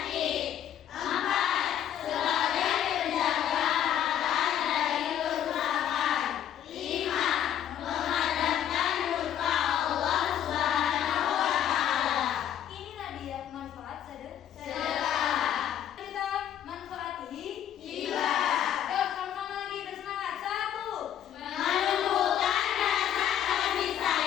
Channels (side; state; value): right; quieter; 10.4 dB